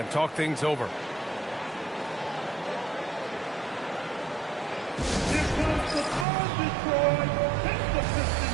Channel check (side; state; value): left; drops out; at 6.2 s